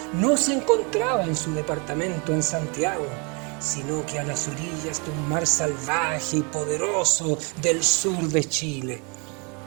no se encontraba en su departamento en Santiago, sino que a las orillas de un mar salvaje y poderoso del sur de Chile.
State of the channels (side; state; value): left; quieter; 32.8 dB